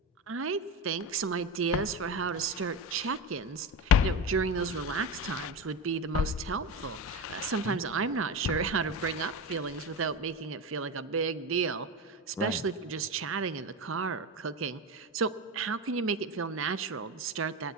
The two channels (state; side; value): normal; both; correlation 0.21